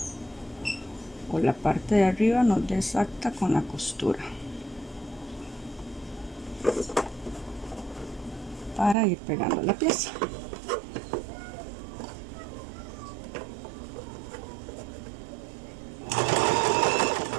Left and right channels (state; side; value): drops out; left; at 9.0 s